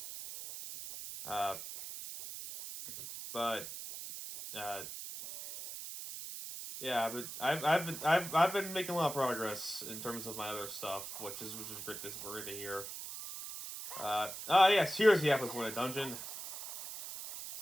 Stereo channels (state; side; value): noise; right; hiss, 9 dB below the sound